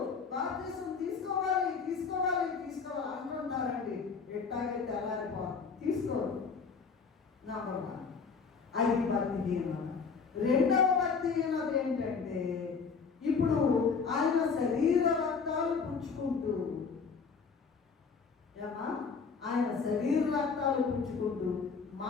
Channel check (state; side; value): quieter; right; 5.3 dB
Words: బాప్తీసం తీసుకోవాలి తీసుకోవాలి తీసుకోవాలి అంటుంటారండి. ఎట్టాగే తెల్లారిపోవాలి, తీసుకోవాలి. నంబర్ 1 అది భక్తిహీనత. రెండవ భక్తిహీనత ఏంటంటే ఇప్పుడు ఆయన శరీర రక్తాలు పుచ్చుకుంటూ, ఆయన శరీర రక్తాలు పుచ్చుకుంటూ